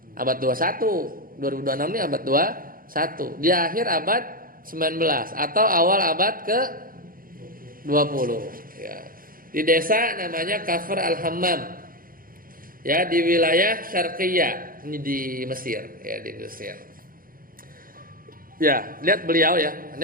Abad 21. 2026 ini abad 21. Di akhir abad 19 atau awal abad ke 20 ya. Di desa namanya Kafr Al-Hammam. Ya, di wilayah Syarqiyah, ini di Mesir, ya di Mesir. Ya, lihat beliau ya. Ini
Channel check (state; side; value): late; left; 0.41 ms